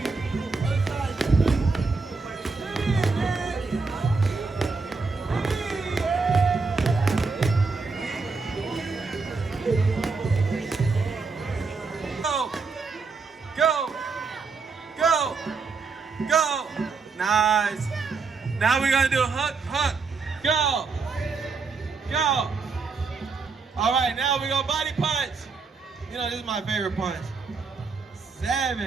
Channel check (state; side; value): quieter; left; 4.5 dB